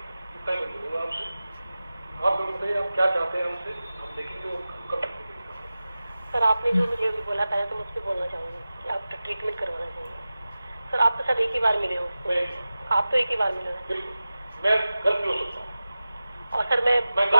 कितना ही बोलूँगा आपसे, आप बताइए आप क्या चाहते हैं हमसे, हम देखेंगे वो कब तक। सर आपने जो मुझे अभी बोला था तो मुझ पर बोलना चाहूँगी कि आपका ट्रीटमेंट करवाना चाहिए। सर आप तो शायद एक ही बार मिले हो, आप तो एक ही बार मिले हो। बिल्कुल, मैं गलत हो सकता हूँ और सर मैं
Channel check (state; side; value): inverted; both; correlation -0.95